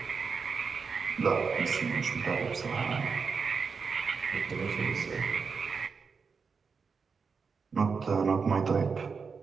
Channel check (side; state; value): left; quieter; 5.3 dB